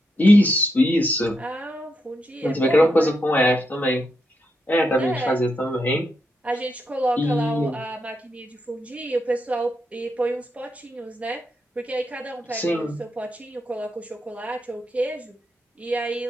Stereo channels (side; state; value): both; normal; correlation 0.82